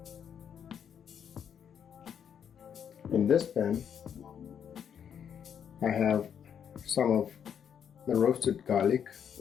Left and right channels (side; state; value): right; quieter; 8.2 dB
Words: In this pan, I have some of the roasted garlic,